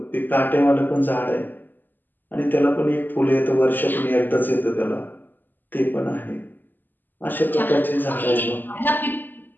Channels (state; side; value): late; right; 0.090 ms